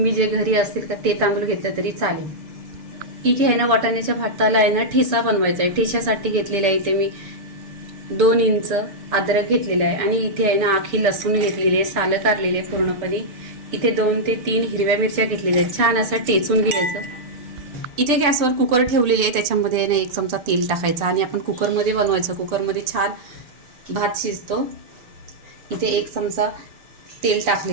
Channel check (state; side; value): late; left; 6.9 ms